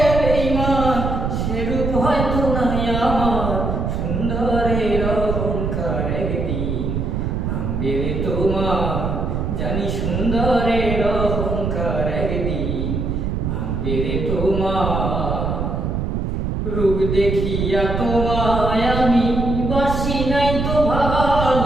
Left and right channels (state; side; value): noise; right; rumble, 1 dB below the sound